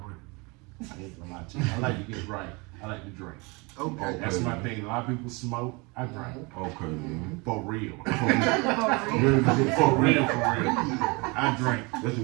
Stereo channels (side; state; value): left; quieter; 27.9 dB